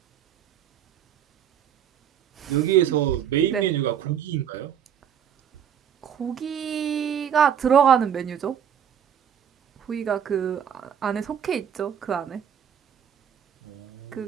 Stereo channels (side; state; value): left; quieter; 8.8 dB